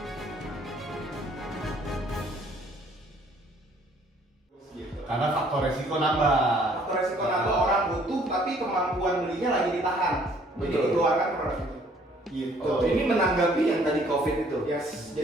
Karena faktor resiko nambah. Faktor resiko nambah, orang butuh tapi kemampuan belinya lagi ditahan. Jadi dikeluarkan produk itu. Gitu. Oh, ini menanggapi yang tadi COVID itu. Yes.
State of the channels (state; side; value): normal; both; correlation 0.60